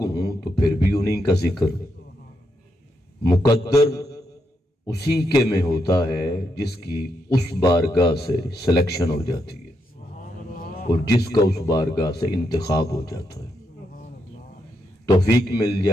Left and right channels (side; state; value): both; normal; correlation 0.81